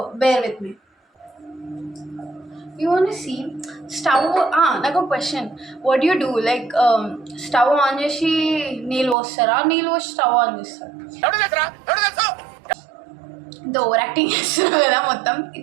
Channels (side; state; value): left; drops out; at 9.2 s